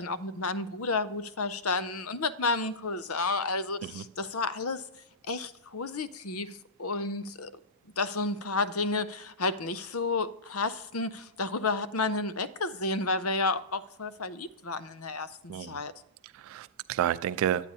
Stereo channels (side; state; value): both; normal; correlation -0.19